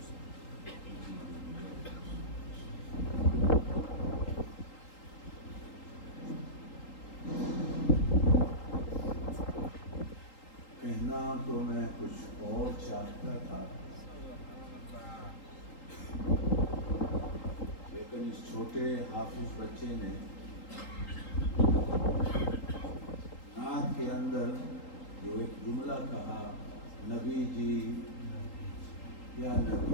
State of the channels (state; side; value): late; right; 3.8 ms